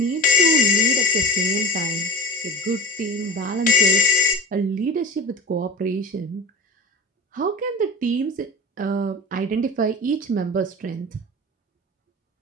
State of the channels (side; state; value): both; normal; correlation 0.32